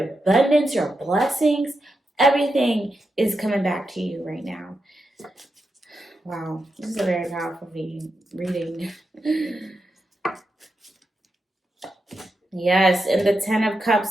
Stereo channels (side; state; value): both; normal; correlation 0.87